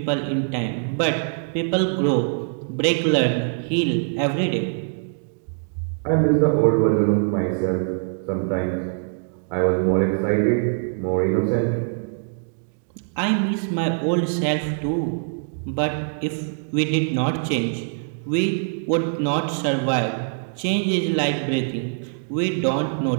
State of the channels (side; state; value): left; silent; digital silence